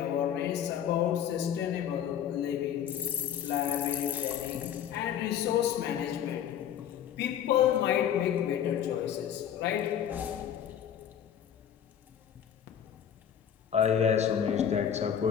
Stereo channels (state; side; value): quieter; right; 9.3 dB